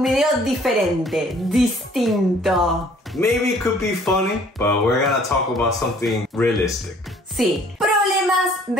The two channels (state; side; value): normal; both; correlation 0.57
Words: video diferente, distinto. Maybe it could be funny, but we're gonna talk about something realistic. Sí, problemas